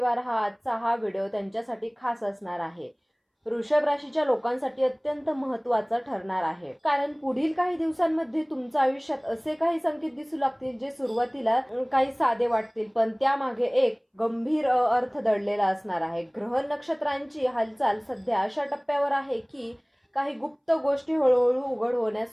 आजचा व्हिडिओ त्यांच्यासाठी खास असणार आहे. वृषभ राशीच्या लोकांसाठी अत्यंत महत्त्वाचा ठरणार आहे, कारण पुढील काही दिवसांमध्ये तुमच्या आयुष्यात असे काही संकेत दिसू लागतील जे सुरुवातीला काही साधे वाटतील, पण त्यामागे एक गंभीर अर्थ दडलेला असणार आहे. ग्रह नक्षत्रांची हालचाल सध्या अशा टप्प्यावर आहे की काही गुप्त गोष्टी हळूहळू उघड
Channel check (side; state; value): both; identical; correlation 1.00